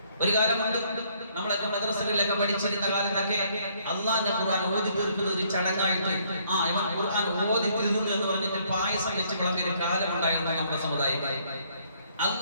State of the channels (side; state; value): both; inverted; correlation -0.66